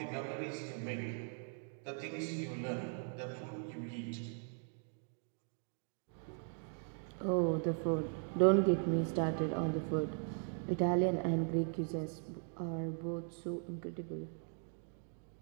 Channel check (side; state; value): left; silent; 52 dB below the other